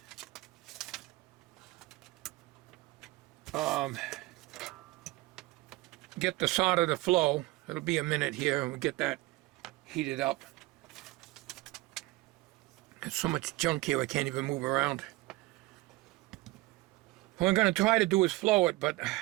get the solder to flow. It'll be a minute here and we'll get that heated up. There's so much junk here I can't even move around. What I'm going to try to do is flow it, but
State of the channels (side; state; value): left; quieter; 19.9 dB